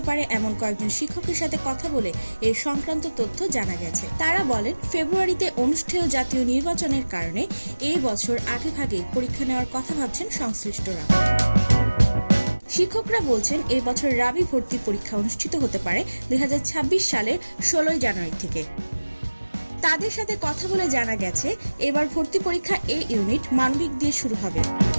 পারে এমন কয়েকজন শিক্ষকের সাথে কথা বলে এ সংক্রান্ত তথ্য জানা গেছে। তারা বলেন, ফেব্রুয়ারিতে অনুষ্ঠেয় জাতীয় নির্বাচনের কারণে এই বছর আগেভাগে পরীক্ষা নেওয়ার কথা ভাবছেন সংশ্লিষ্টরা। শিক্ষকরা বলছেন, এই বছর রাবি ভর্তি পরীক্ষা অনুষ্ঠিত হতে পারে 2026 সালের 16 জানুয়ারি থেকে। তাদের সাথে কথা বলে জানা গেছে, এবার ভর্তি পরীক্ষা এ ইউনিট মানবিক দিয়ে শুরু হবে।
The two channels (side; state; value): both; inverted; correlation -1.00